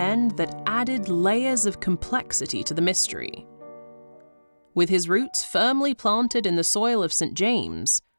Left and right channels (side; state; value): both; inverted; correlation -1.00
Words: that added layers of complexity to the mystery. With his roots firmly planted in the soil of St. James,